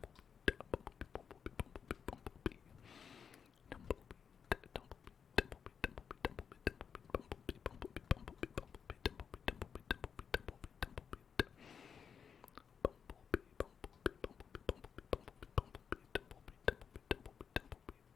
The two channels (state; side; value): quieter; right; 7.0 dB